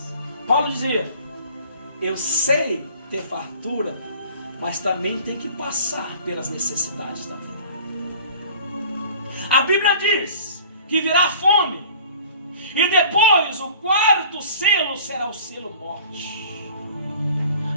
Paulo dizia: eu sei ter fartura, mas também tem que passar pelas necessidades da vida. A Bíblia diz que virá fome, e depois o quarto selo será o selo morte.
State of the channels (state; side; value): inverted; both; correlation -0.47